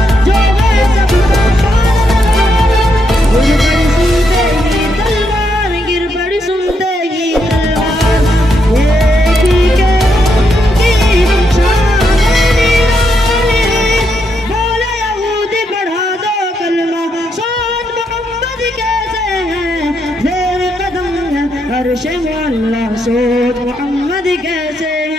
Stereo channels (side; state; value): both; normal; correlation 0.79